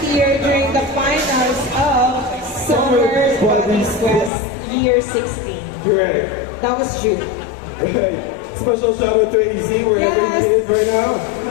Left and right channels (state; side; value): drops out; right; at 4.3 s